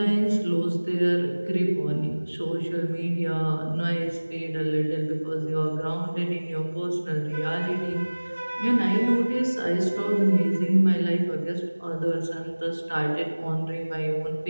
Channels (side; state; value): both; inverted; correlation -1.00